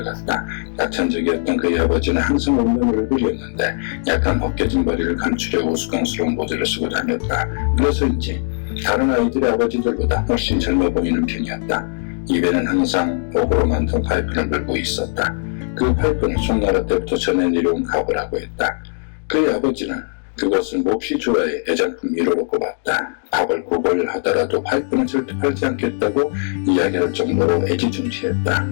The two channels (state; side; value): silent; right; 66 dB below the other